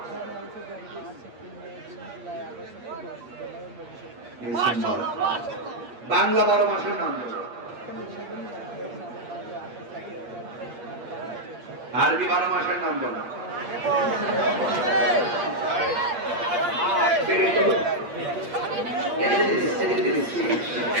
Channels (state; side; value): late; left; 8.5 ms